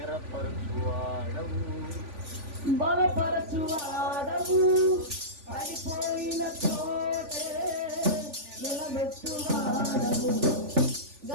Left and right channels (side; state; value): left; late; 3.5 ms